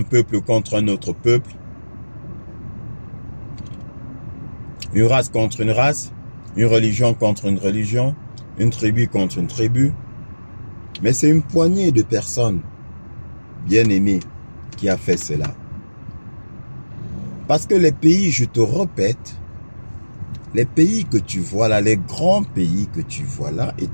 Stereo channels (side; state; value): both; inverted; correlation -1.00